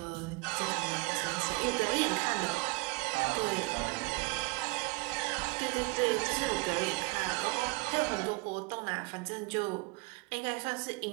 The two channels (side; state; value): left; quieter; 26.4 dB